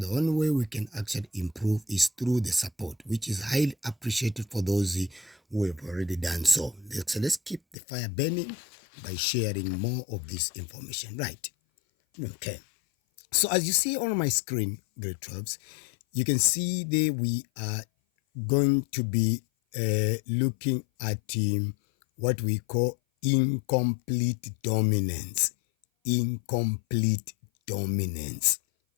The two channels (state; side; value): drops out; right; at 7.8 s